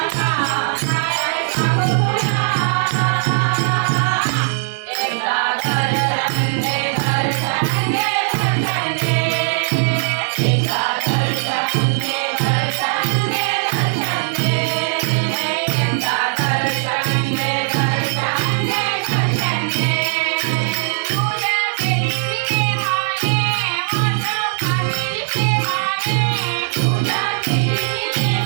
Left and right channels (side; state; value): left; silent; digital silence